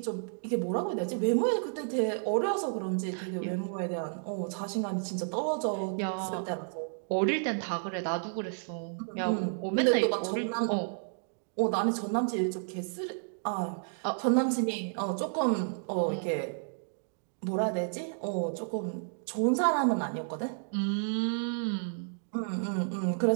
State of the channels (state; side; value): silent; left; digital silence